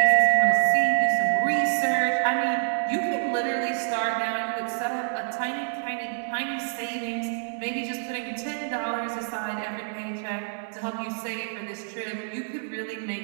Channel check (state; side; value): silent; left; 59 dB below the other